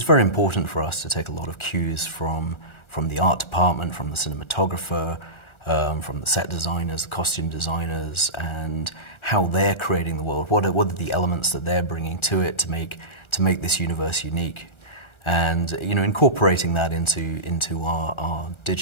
very important for us to take a lot of cues from the art department, from the cinematographer, from the set designers, the costume designers, and how they're creating the world. What are the elements that they're bringing to it to make this universe unique, and, you know, incorporating that into our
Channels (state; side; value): late; right; 1.3 ms